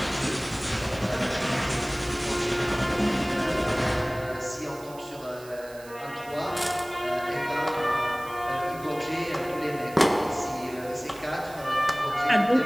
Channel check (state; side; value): noise; right; hiss, 20 dB below the sound